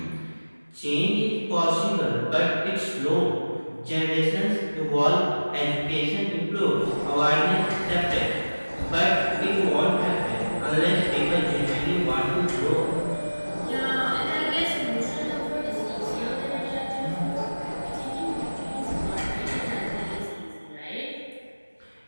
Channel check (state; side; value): inverted; both; correlation -1.00